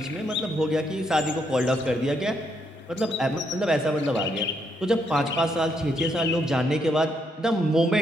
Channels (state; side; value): normal; both; correlation 0.75